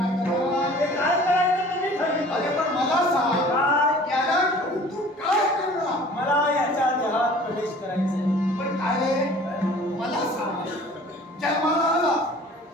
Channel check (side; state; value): both; normal; correlation 0.48